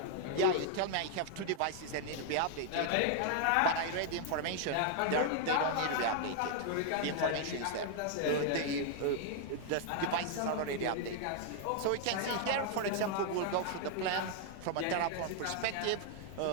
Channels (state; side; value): different; both; correlation 0.00